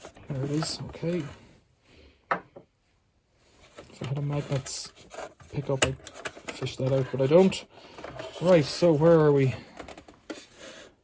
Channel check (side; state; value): both; identical; correlation 1.00